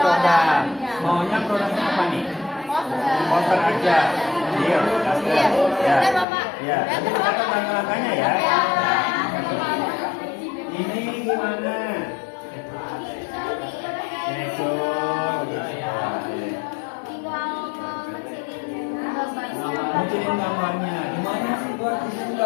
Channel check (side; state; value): right; drops out; at 6.2 s